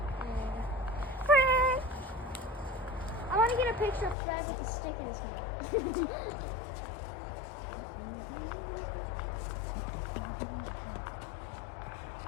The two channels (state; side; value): drops out; right; at 4.2 s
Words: Fred! I want to get a picture of Fred with a stick in his hand.